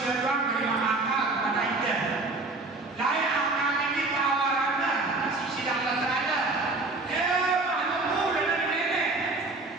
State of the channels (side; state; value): left; quieter; 3.3 dB